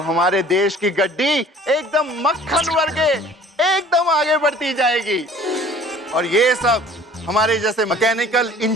हमारे देश की गड्डी एकदम मक्खन वर्गे एकदम आगे बढ़ती जाएगी। और ये सब हमारे जैसे मैकेनिकल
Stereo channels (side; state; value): both; normal; correlation 0.50